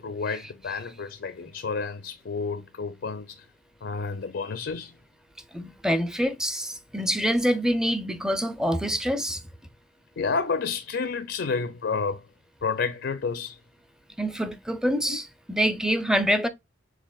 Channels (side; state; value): both; normal; correlation 0.55